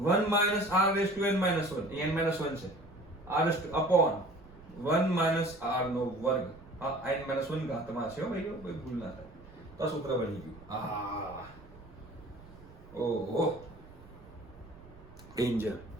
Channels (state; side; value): noise; right; rumble, 21 dB below the sound